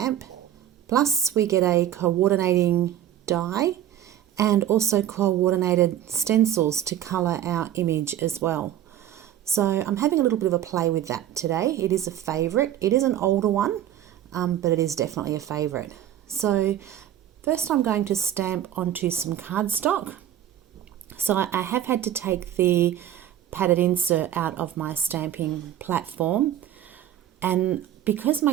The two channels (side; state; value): left; quieter; 11.3 dB